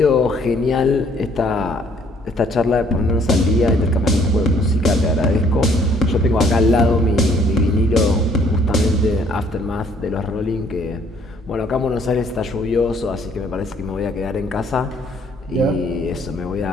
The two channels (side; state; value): both; normal; correlation 0.62